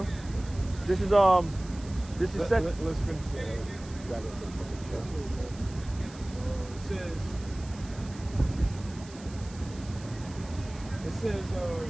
This is Let's finish that.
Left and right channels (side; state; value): right; noise; hiss, 19 dB below the sound